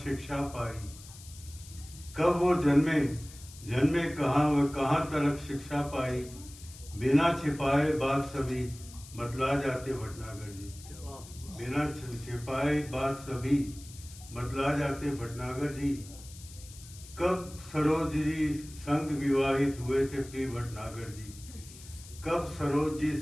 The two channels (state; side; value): noise; left; hiss, 18 dB below the sound